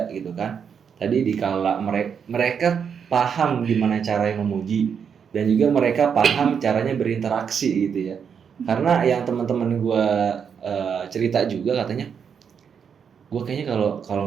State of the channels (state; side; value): quieter; left; 7.0 dB